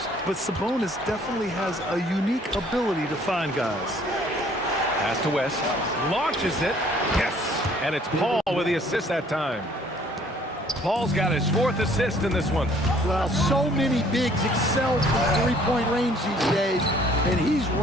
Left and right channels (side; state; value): both; normal; correlation 0.58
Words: but Sabonis definitely has a unique ability to find guys. Pass to West. Launches it. Yes. And it's Paul with the assist that time. Paul's got his 4th assist in this one. Well, so many bigs excel from three-point range these days, and he's